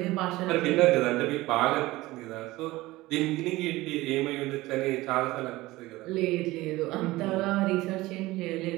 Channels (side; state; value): left; quieter; 18.8 dB